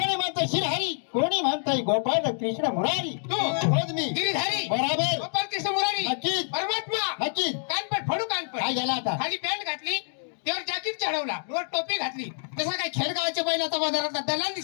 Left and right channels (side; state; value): right; silent; digital silence